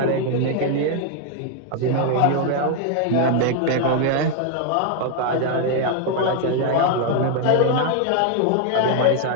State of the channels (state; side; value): different; both; correlation 0.00